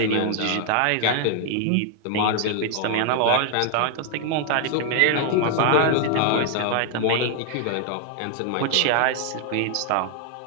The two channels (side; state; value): both; different; correlation 0.00